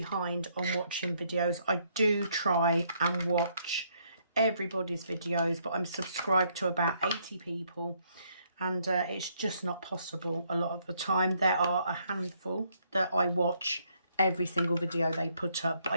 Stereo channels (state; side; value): inverted; both; correlation -0.71